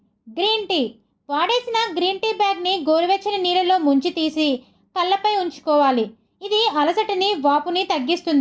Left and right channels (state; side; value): identical; both; correlation 1.00